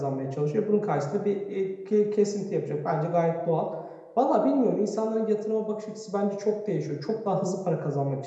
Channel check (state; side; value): identical; both; correlation 1.00